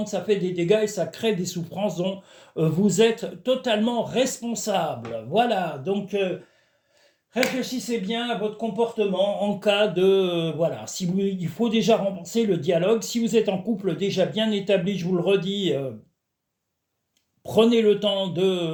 ça fait des dégâts et ça crée des souffrances dont vous êtes totalement responsable. Voilà, donc réfléchissez bien à votre comportement en cas de... voilà, si vous, il faut déjà renforcer le dialogue. Si vous êtes en couple déjà bien établi, je vous le redis, prenez le temps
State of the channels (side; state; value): both; identical; correlation 1.00